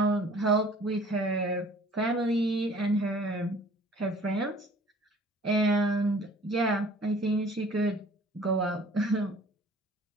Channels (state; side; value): normal; both; correlation 0.51